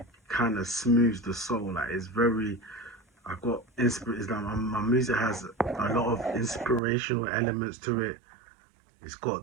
kind of smooths the soul. Like it's very, I got it's like my music has a lot of inspirational elements to it. It's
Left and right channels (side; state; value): left; drops out; at 6.8 s